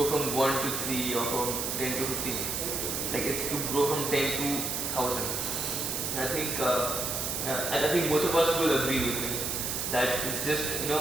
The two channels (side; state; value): right; noise; hiss, 1 dB below the sound